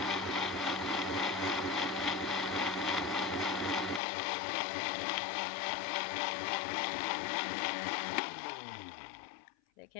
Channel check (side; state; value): right; drops out; at 4.0 s